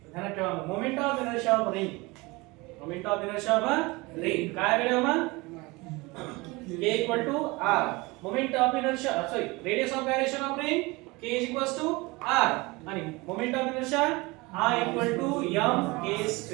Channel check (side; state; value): left; quieter; 23.9 dB